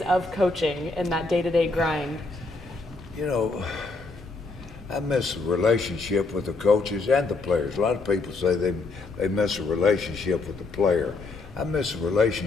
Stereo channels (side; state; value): right; quieter; 3.6 dB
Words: of coaching and that day-to-day grind? I miss a relationship with the coaches and the players. A lot of people say they miss a relationship with the player. I miss a